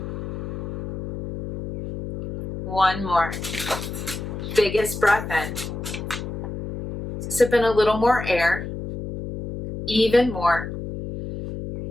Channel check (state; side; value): noise; left; hum, 7 dB below the sound